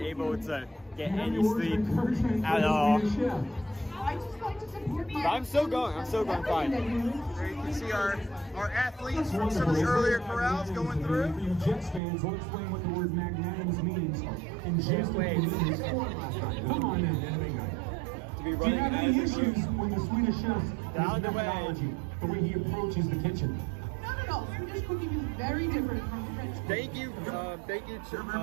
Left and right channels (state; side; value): drops out; left; at 12.0 s